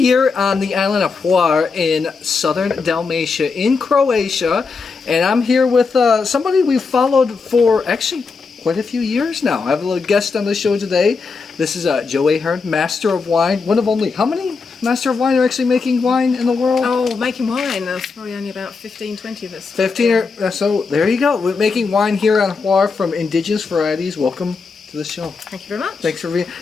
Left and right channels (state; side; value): quieter; right; 4.7 dB